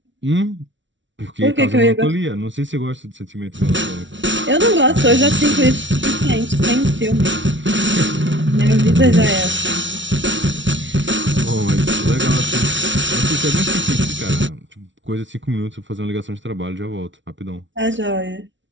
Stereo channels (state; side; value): late; left; 0.55 ms